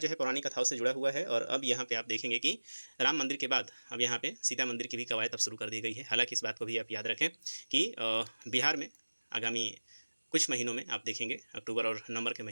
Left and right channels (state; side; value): inverted; both; correlation -1.00